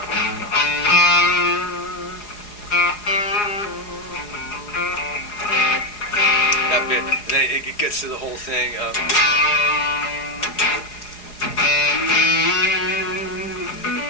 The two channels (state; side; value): late; right; 4.8 ms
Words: That bit, and then it gets to the whole thing of.